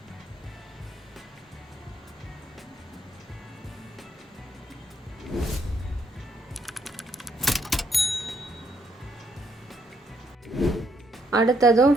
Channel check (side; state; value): both; normal; correlation 0.73